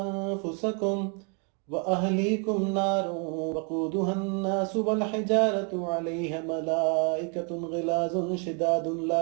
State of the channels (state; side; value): quieter; left; 37.1 dB